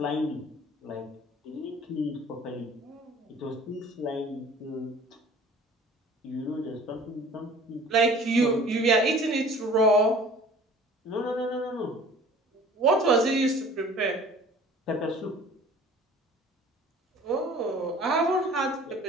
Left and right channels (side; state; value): both; normal; correlation 0.48